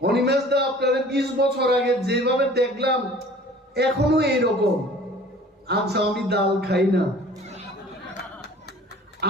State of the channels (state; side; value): normal; both; correlation 0.48